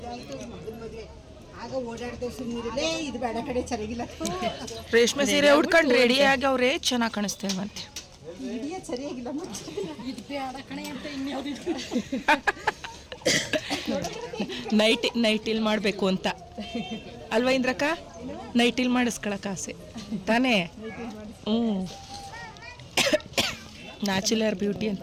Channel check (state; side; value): identical; both; correlation 1.00